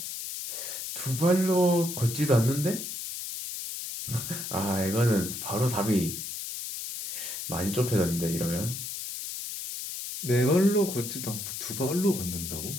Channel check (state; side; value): noise; left; hiss, 6 dB below the sound